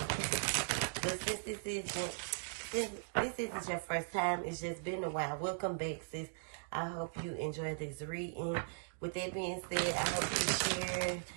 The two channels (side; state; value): left; silent; digital silence